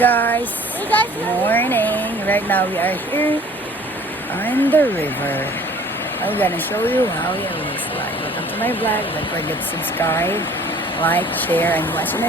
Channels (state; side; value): normal; both; correlation 0.51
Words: guys, morning. Right now we are here on the river. I'm gonna show you how it looks like. Welcome to my vlog. Don't forget to subscribe, like, share, and watch